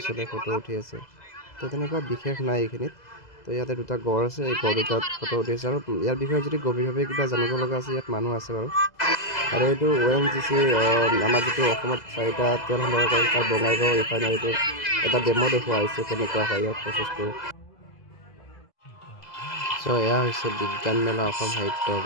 ছোৱালীয়ে ফটো উঠি আছে তো তেনেকুৱা বিশেষ নাই এইখিনিত তো ইয়াতে দুটা গড় আছে এই গড় দুটাত ফটো উঠি আছে আৰু ইয়াৰ বিষয়ে যদি গভীৰভাৱে কিবা জানিব লগা আছে ইয়াত মানুহ আছে বাৰু আৰু এইটো ONGC আমাৰ যিটো অসমত 4টা তেল সম্ভৱ কৰে তাৰ বঙাইগাঁও ৰিফাইনাৰীটো এটা ডেমো দেখুওৱা হৈছে কেনেকুৱা হয় ইয়াৰ প্ৰচেছটো চ' এয়া হৈছে বিজ্ঞান মেলা অসম সাহিত্য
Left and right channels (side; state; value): right; late; 2.0 ms